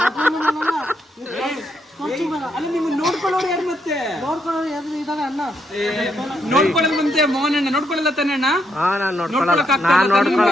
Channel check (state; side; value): normal; both; correlation 0.77